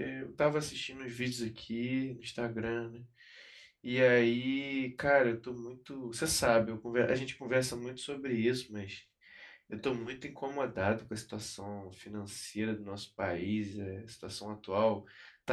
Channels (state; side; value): identical; both; correlation 1.00